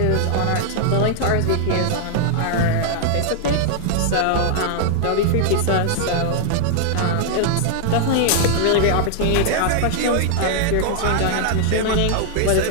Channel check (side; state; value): both; different; correlation 0.00